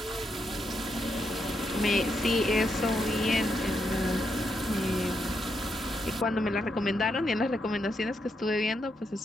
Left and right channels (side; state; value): both; normal; correlation 0.81